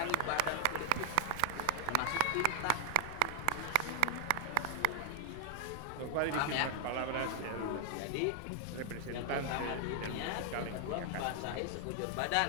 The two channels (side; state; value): both; different; correlation 0.00